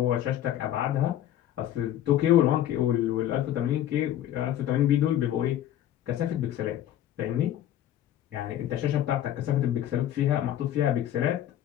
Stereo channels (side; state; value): right; quieter; 11.8 dB